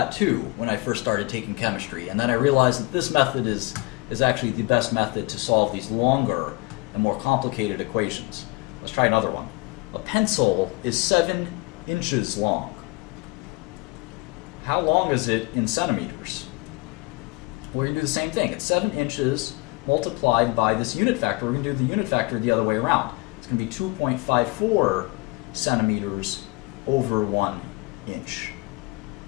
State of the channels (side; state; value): right; quieter; 25.4 dB